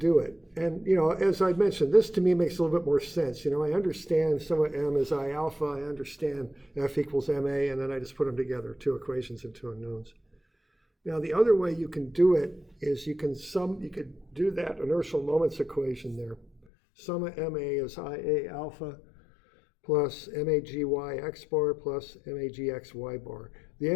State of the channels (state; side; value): drops out; right; at 16.6 s